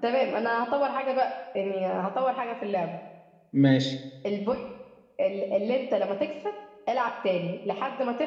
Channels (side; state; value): both; identical; correlation 1.00